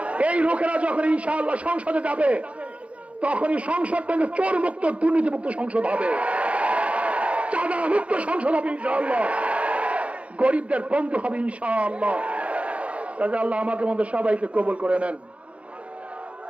এই লোকেরা যখন ইনশাআল্লাহ সংসদে যাবে, তখনই সংসদ থেকে চোর মুক্ত, দুর্নীতি মুক্ত সংসদ হবে, চাঁদা মুক্ত সংসদ হবে ইনশাআল্লাহ, গরিবদের বন্ধু হবে ইনশাআল্লাহ। কাজে আল্লাহ আমাকে মধ্যে সবাইকে কবুল করে নেন,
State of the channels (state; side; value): late; left; 0.063 ms